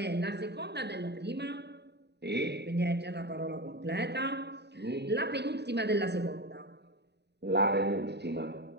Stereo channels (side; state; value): left; late; 0.49 ms